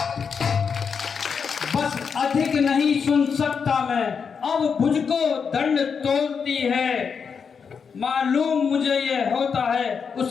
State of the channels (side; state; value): right; quieter; 6.2 dB